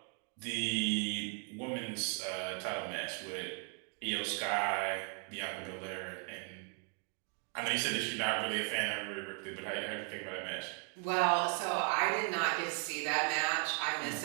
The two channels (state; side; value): quieter; left; 35.7 dB